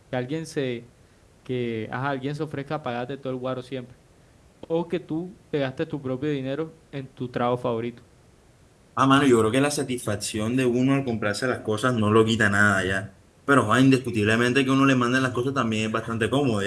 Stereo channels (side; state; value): both; identical; correlation 1.00